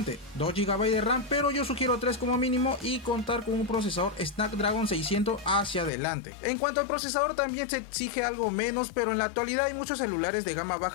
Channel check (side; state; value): right; drops out; at 5.9 s